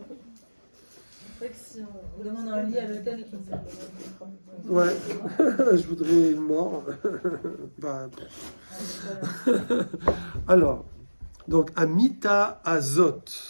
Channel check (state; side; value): inverted; both; correlation -1.00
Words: vrai que si on demande un lit à l'hôtel qui Ouais. Je voudrais une mort. Bah, alors, donc, amita azot.